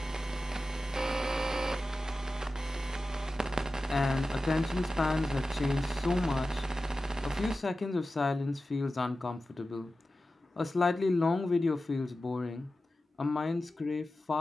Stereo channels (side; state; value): both; normal; correlation 0.94